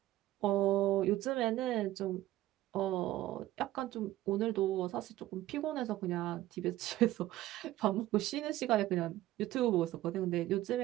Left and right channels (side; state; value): left; quieter; 15.6 dB